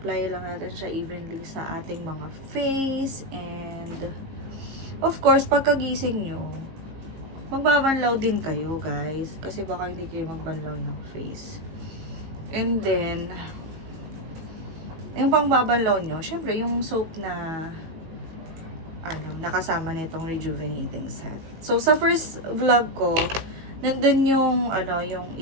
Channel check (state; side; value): late; left; 18 ms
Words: lang natin siya evenly sa ating mga face. And, of course, pagkagising nyo, magbabanlaw din kayo, guys. Kasi baka hindi kayo magbanlaw ng face. And then, yung pangbabanlaw nyo, syempre, yung soap na, nakasama nitong rejuvenating set. So, sa first vlog ko, nandun yung, yung